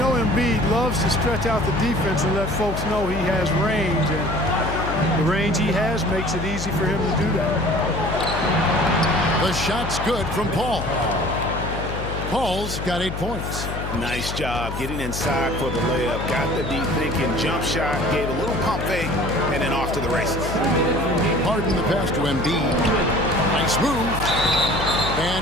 Embiid loves to stretch out the defense and let folks know he has range. And the range he has makes it easy for him to do that. The shot's good from Paul. Paul's got 8 points. Nice job getting inside for the layup. Got the deep thinking jump shot, gave a little pump fake, and then off to the races. Harden the pass to Embiid. Nice move.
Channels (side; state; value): left; noise; hum, 6 dB below the sound